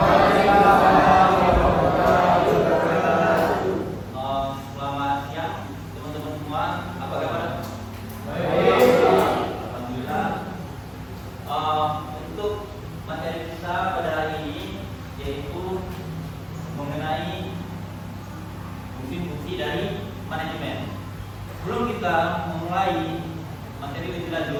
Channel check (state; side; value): identical; both; correlation 1.00